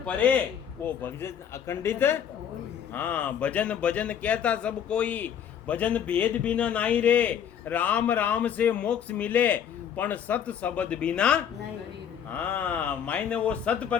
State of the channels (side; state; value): right; quieter; 8.6 dB